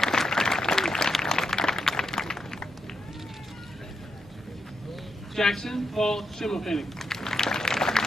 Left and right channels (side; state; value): both; normal; correlation 0.82